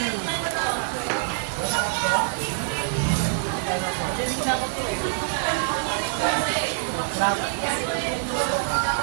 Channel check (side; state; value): left; silent; digital silence